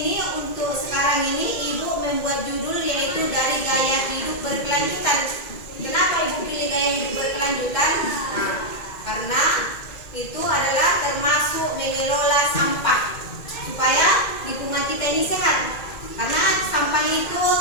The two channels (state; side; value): late; right; 2.1 ms